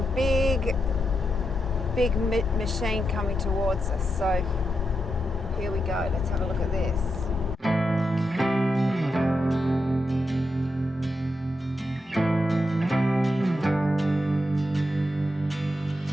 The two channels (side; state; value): both; normal; correlation 0.85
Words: big machine coming towards us, so here we go. Let's have a look at this.